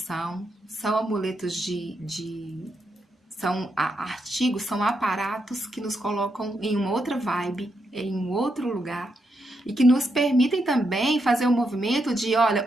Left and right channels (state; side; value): normal; both; correlation 0.82